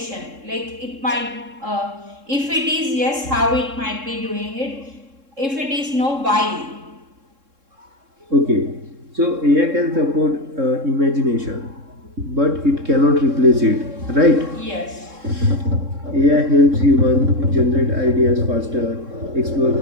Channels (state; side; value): late; left; 3.7 ms